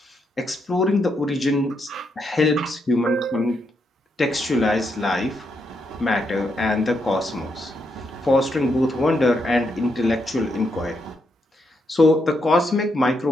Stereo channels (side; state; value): both; normal; correlation 0.80